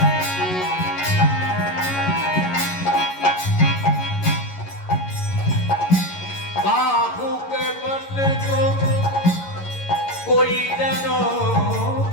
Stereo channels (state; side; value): late; right; 11 ms